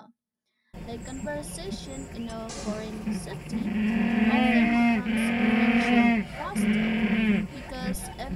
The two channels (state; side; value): identical; both; correlation 1.00